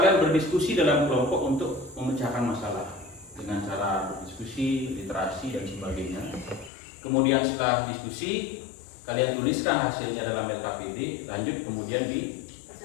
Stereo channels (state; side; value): drops out; right; at 6.7 s